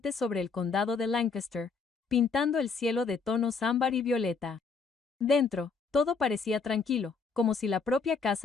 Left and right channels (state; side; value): quieter; right; 4.9 dB